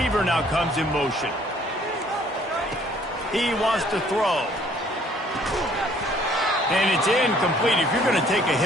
now comes in motion. He wants to throw. And it's incomplete. If you're going to take a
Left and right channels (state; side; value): normal; both; correlation 0.60